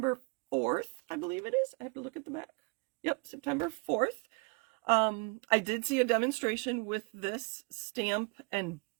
4th, I believe it is. I have to look at the back. Yep, September 4th. I did see a demonstration with this stamp and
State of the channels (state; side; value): quieter; left; 31.9 dB